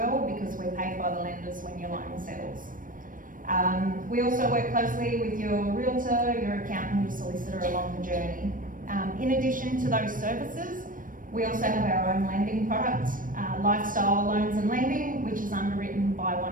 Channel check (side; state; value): left; late; 0.40 ms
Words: because we're paid by the lenders when your loan settles. We also work closely with your realtor, your accountant, your solicitor along the journey. In addition to those services, we also have our own lending product, Lifestyle Loans and Lending, which is underwritten by